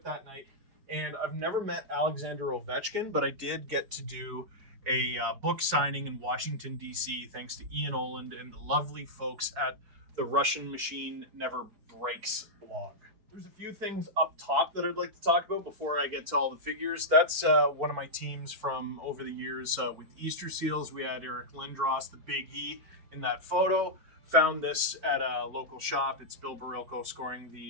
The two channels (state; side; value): late; left; 4.4 ms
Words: that night. And I've never met Alexander Ovechkin, but I did get to do a book signing in Washington, D.C., thanks to Ian Oland and the lovely folks at the Russian Machine Never Breaks blog. There's a few things up top that I'd like to talk about before I get to all the figures. That's one of my teams from over the years with Easter Seals. We had Eric Lindros, the Big E, in that photo. Found this at a local shop. It's Bill Barilko scoring